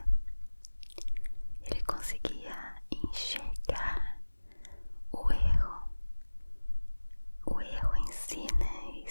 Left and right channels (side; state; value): both; inverted; correlation -1.00